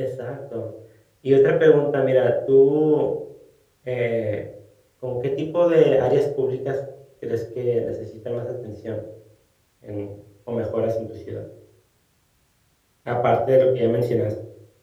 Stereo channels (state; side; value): identical; both; correlation 1.00